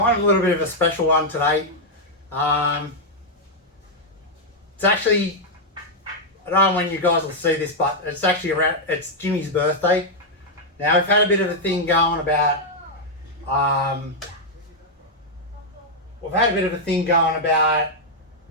of a little bit of a special one today. It's actually, I don't know when you guys will see this, but it's actually it's Jimmy's birthday. Now we've had a bit of a thing going about,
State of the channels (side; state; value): both; normal; correlation -0.03